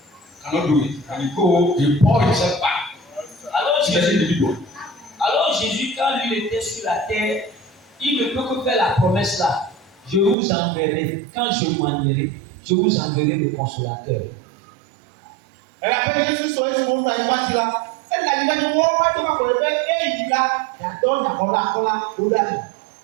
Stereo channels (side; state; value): left; drops out; at 10.4 s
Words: cannot do it. And he go, he pour himself back Alors to the Jésus, individual. quand lui était sur la terre, il ne peut que faire la promesse là. Je vous enverrai, quand je m'en irai, je vous enverrai le consolateur. Abe Yesu sɔ esi mo na ipa ti la. Ena yi na wo ma to ma ko ebe eyi la yatɔ nyakɔla kɔla o da yi.